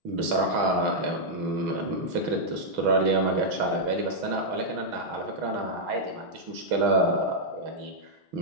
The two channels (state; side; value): late; left; 6.2 ms